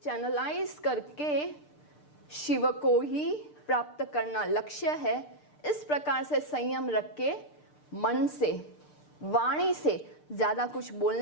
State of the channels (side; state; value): right; late; 6.7 ms